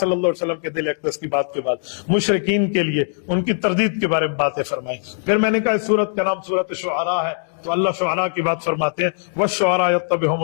اللہ علیہ وسلم کے دل اقدس کی بات کے بعد مشرکین کے لیے ان کی تردید کے بارے میں باتیں فرمائیں۔ پھر میں نے کہا اس سورت کا نام سورت شعراء ہے، تو اللہ شعراء کی بات فرماتے ہیں، وَالشُّعَرَاءُ يَتَّبِعُهُمُ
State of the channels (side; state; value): right; silent; digital silence